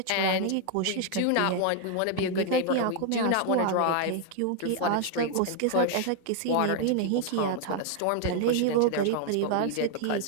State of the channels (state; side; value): different; both; correlation 0.00